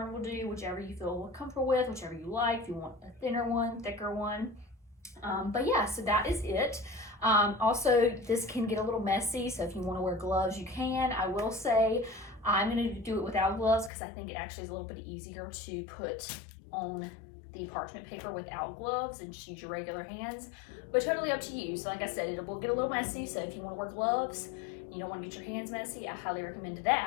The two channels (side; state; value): right; drops out; at 13.9 s